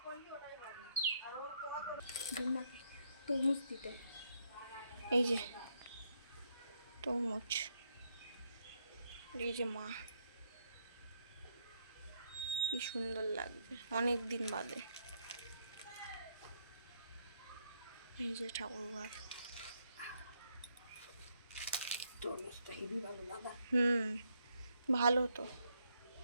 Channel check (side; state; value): both; inverted; correlation -0.74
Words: তরমুজ দিতে, এই যে তরমুজ, এই যে মা, কি সুন্দর লাগবে অনেক দিন বাদে। এই যে ঠাকুরঘর, ভালো তো।